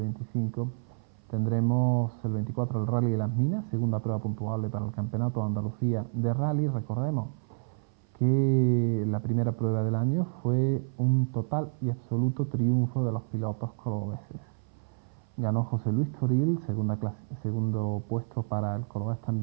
tendremos el 24 el Rally de las Minas, segunda prueba puntuable para el Campeonato de Andalucía de Rally. Recordemos que la primera prueba del año fue un total y absoluto triunfo de los pilotos cordobeses. Ganó José Luis Toril, segundo puesto para el cordobés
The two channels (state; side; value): silent; left; 57 dB below the other